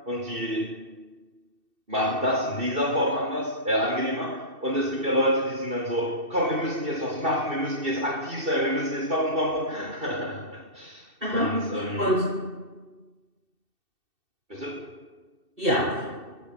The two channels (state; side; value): late; left; 2.7 ms